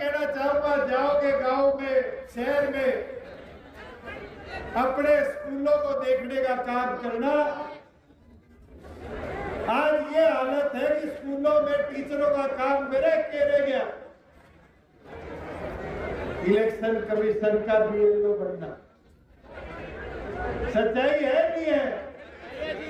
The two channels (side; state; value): both; identical; correlation 1.00